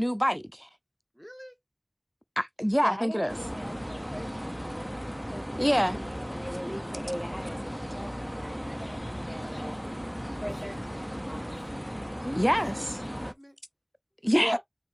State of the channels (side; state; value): both; identical; correlation 1.00